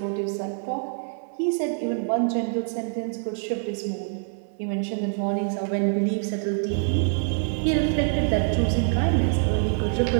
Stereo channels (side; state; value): left; silent; digital silence